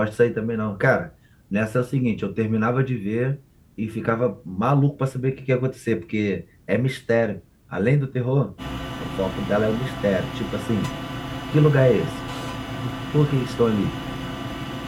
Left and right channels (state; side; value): identical; both; correlation 1.00